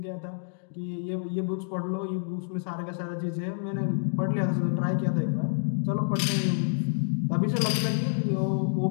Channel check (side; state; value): right; silent; digital silence